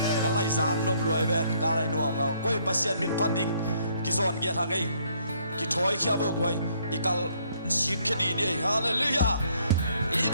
Kalai zang nom luai ven kalai nuam ngau koi pasien min pading kizon kia thangai ki thoi khia bo koi ikal sikhedi ni hallelujah.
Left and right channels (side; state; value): both; inverted; correlation -0.67